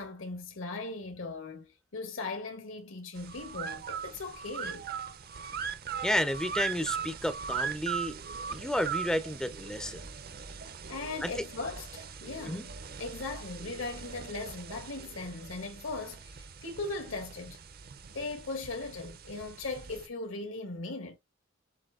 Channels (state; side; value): normal; both; correlation 0.38